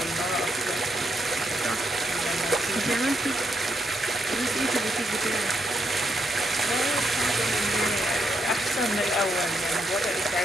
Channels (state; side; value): normal; both; correlation 0.80